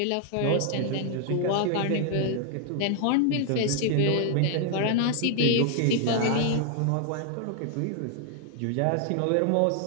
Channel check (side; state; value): both; different; correlation 0.00